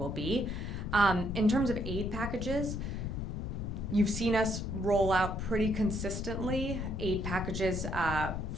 be. In terms of aid packages, you've seen us roll out pretty consistently aid packages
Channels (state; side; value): noise; left; rumble, 3 dB below the sound